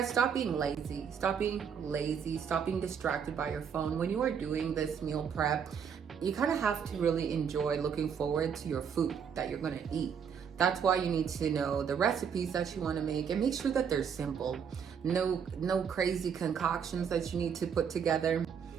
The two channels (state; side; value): quieter; left; 7.2 dB